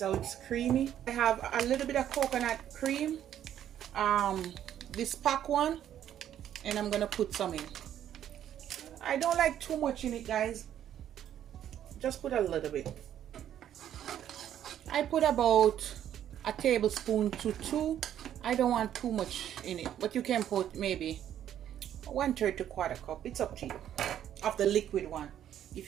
how it's creamy. I have a little bit of coconut cream, this pack one, and I'm gonna put some in. I don't like too much in it, guys. Just put a little bit. I put about a tablespoon to 2. I don't want too much in it, but you can put maybe 1/3 to 1/4 cup. It's up to you, of the liquid one, if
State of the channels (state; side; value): quieter; left; 10.6 dB